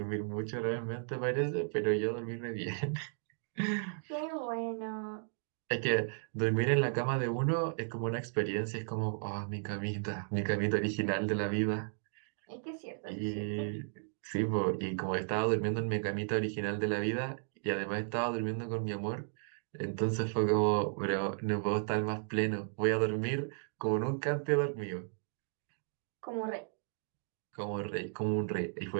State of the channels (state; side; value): silent; left; digital silence